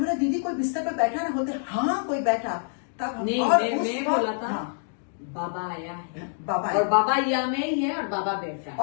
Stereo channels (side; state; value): right; silent; digital silence